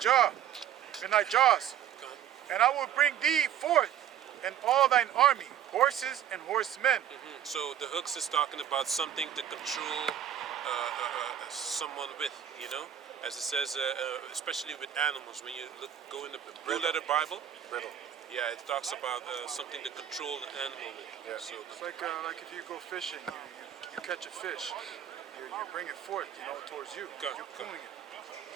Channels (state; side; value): quieter; left; 9.9 dB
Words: and I will bring thee forth and all thine army, horses and horsemen. So the hooks is talking about something to control someone with, you know, as it says, especially with animals. When you go in the Blue Letter Bible, Riddle. yeah, it talks about something to control the animal with. Yeah. So It's like if you go fishing, you catch a fish, you bring it forth, you know, towards you. Go, You're go. pulling it.